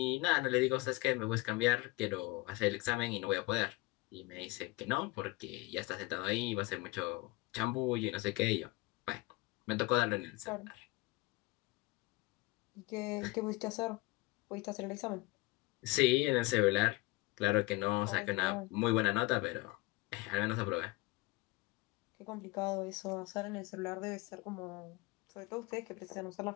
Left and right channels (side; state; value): right; quieter; 22.8 dB